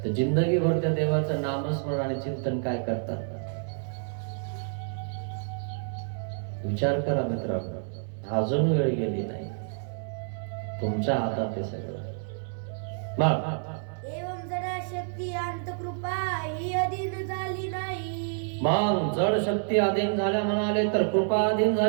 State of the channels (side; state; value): left; silent; 59 dB below the other